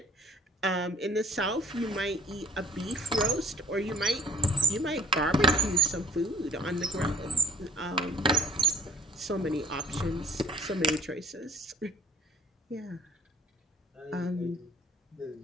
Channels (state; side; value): normal; both; correlation 0.49